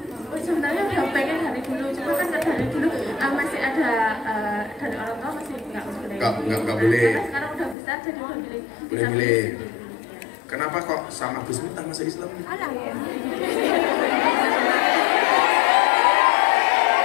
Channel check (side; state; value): right; drops out; at 7.8 s